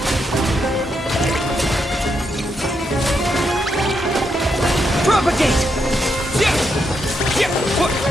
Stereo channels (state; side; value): normal; both; correlation 0.80